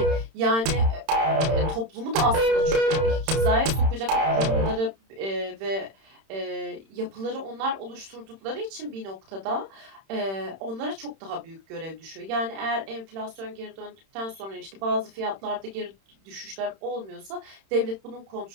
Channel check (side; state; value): left; late; 31 ms